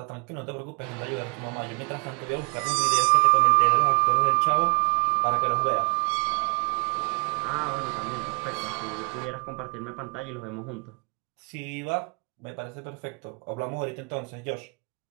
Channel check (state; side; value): quieter; left; 33.8 dB